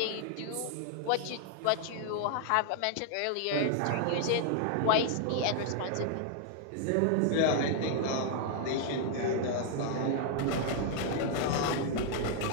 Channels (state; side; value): different; both; correlation 0.00